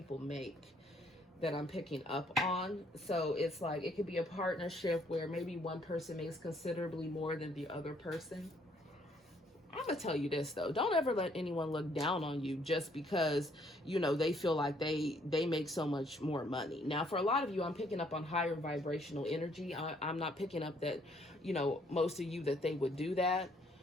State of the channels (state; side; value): normal; both; correlation 0.66